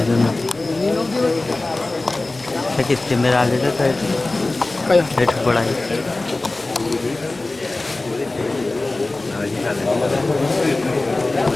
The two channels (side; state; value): right; quieter; 3.0 dB